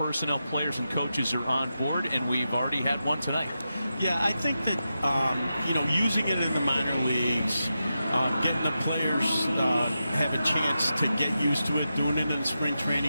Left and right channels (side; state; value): both; inverted; correlation -0.89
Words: players, and coaches are on board, and we've already had one tonight. Yeah, I think that, using it in the minor leagues, getting the players have a chance to get used to it, doing it in spring